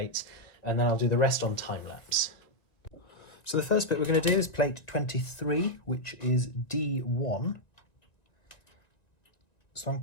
and then I'll do the rest on time-lapse. So the first bit we're going to do is plate 23, which is D1. So I'm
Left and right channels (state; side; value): late; right; 1.9 ms